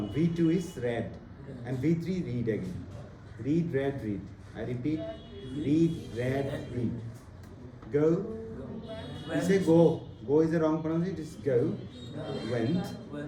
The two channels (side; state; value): both; identical; correlation 1.00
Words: V2 is read and V3 read again. Read, read, read. I repeat, read, read, read. Go. We say go. Go is the wrong pronunciation. It is go. Went,